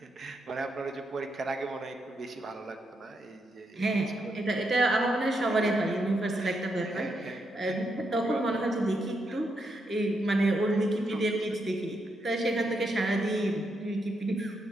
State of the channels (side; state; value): both; normal; correlation 0.81